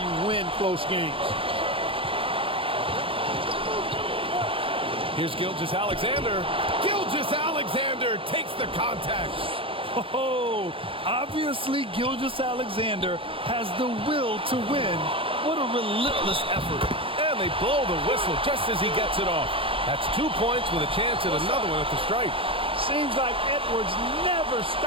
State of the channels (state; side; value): late; left; 0.26 ms